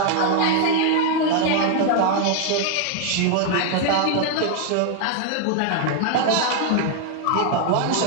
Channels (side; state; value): both; different; correlation 0.00